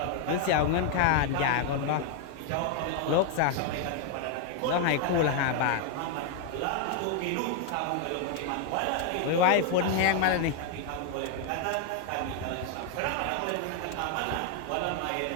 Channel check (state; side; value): different; both; correlation 0.00